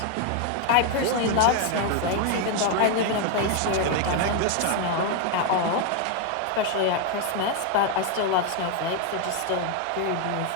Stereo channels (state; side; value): different; both; correlation 0.01